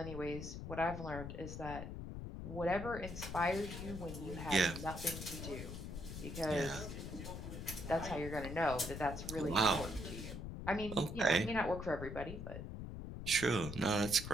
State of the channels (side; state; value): left; noise; rumble, 7 dB below the sound